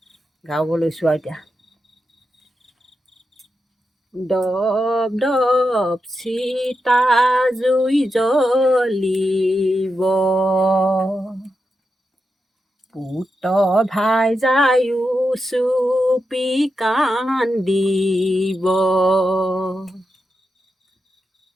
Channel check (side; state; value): both; normal; correlation 0.87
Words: গাব লৈছোঁ আৰু এতিয়া। দপ দপ চিতা জুই জ্বলিব, পুত ভাই যায়ো চুপি কান্দিব,